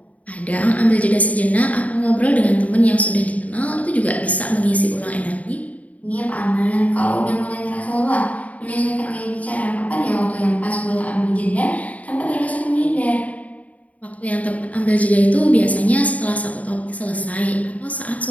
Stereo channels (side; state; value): right; late; 0.070 ms